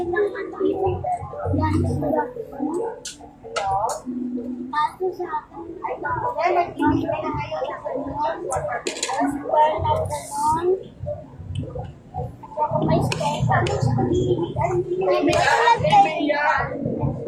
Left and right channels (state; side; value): identical; both; correlation 1.00